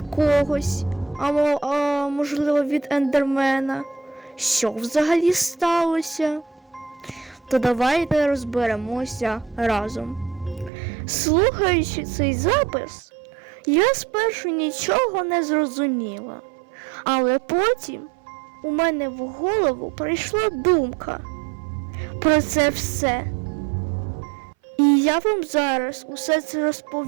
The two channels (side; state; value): left; drops out; at 10.7 s